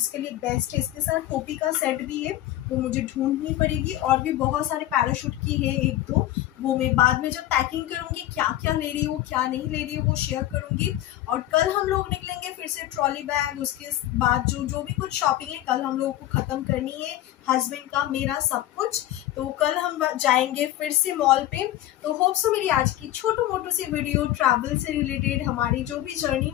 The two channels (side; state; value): right; quieter; 14.1 dB